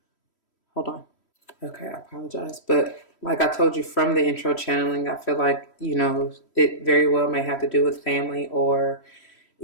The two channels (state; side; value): late; right; 3.1 ms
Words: Hold on. Okay, I apologize. But like I told you from the intro channeling, I feel like, it very well may have to do with family, or